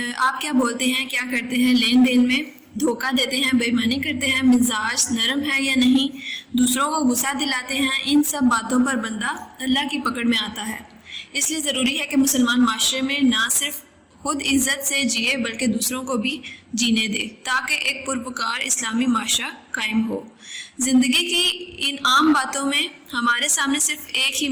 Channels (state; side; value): identical; both; correlation 1.00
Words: آپ کیا بولتے ہیں، کیا کرتے ہیں، لین دین میں دھوکہ دیتے ہیں، بے ایمانی کرتے ہیں، مزاج نرم ہے یا نہیں، دوسروں کو غصہ دلاتے ہیں، ان سب باتوں پر بندہ اللہ کی پکڑ میں آتا ہے۔ اس لیے ضروری ہے کہ مسلمان معاشرے میں نہ صرف خود عزت سے جیے بلکہ دوسروں کو بھی جینے دے تاکہ ایک پروپکار اسلامی معاشرہ قائم ہو۔ زندگی کی ان عام باتوں میں ہمارے سامنے صرف ایک ہی